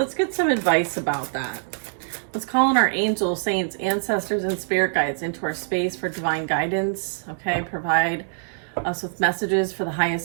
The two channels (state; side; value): silent; left; digital silence